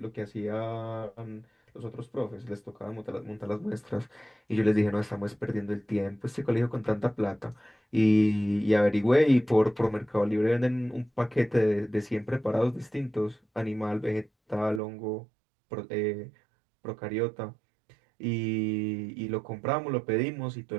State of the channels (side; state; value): left; drops out; at 14.8 s